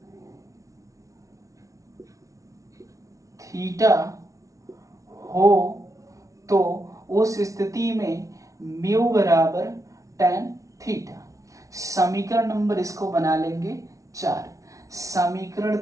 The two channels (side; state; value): left; late; 0.16 ms